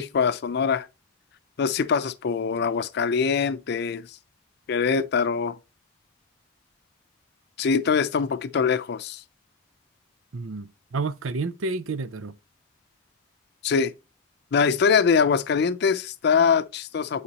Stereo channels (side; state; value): right; quieter; 5.1 dB